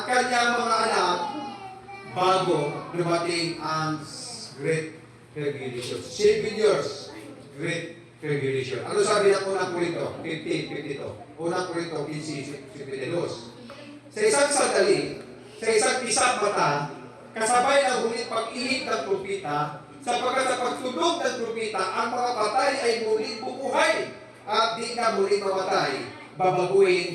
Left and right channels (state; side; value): identical; both; correlation 1.00